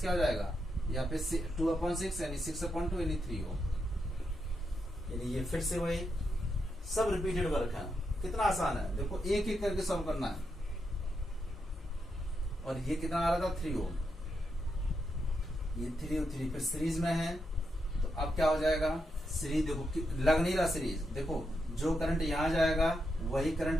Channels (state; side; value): normal; both; correlation 0.83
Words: हो जाएगा यहाँ पे 2/6 यानी 6/2 यानी 3 ओम। यानी ये फिर से वही सब रिपीटेड वर्क है। कितना आसान है, देखो एक एक करके सॉल्व करना है। और ये कितना आ रहा था 3 ओम, ये 3 और 3 फिर सीरीज में है। तो अब क्या हो जाएगा, सीरीज देखो लग नहीं रहा सीरीज, देखो जो करंट यहाँ जाएगा वही करंट